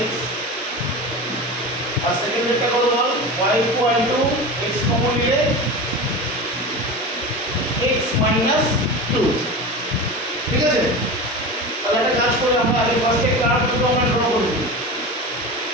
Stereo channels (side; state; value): both; normal; correlation 0.28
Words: x, আর সেকেন্ডটা কত বল y equal to x common নিলে x minus 2। ঠিক আছে, তাহলে একটা কাজ করে আমরা আগে ফার্স্টে কার্ভ দুটো আমরা ড্র করব।